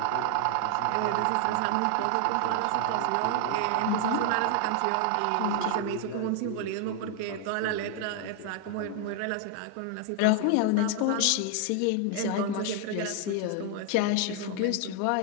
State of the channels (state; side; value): different; both; correlation 0.00